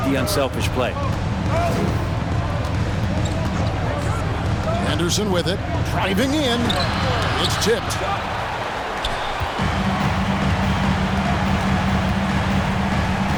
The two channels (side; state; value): both; identical; correlation 1.00